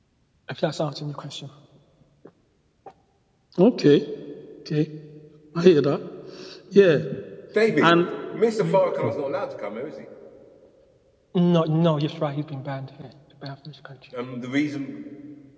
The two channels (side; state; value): both; identical; correlation 1.00